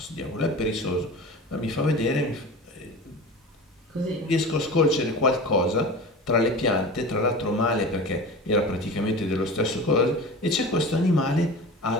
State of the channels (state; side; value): normal; both; correlation 0.33